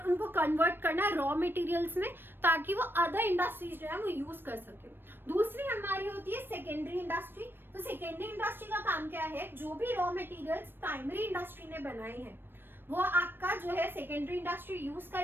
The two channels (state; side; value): late; left; 0.098 ms